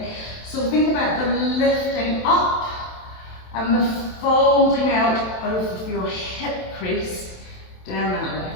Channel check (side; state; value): right; late; 27 ms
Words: so think about the lifting up and the folding out of your hip crease down that leg.